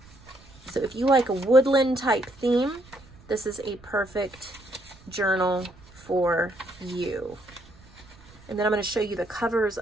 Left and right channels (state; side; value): noise; right; rumble, 24 dB below the sound